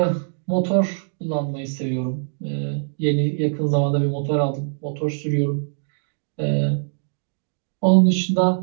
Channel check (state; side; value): silent; left; digital silence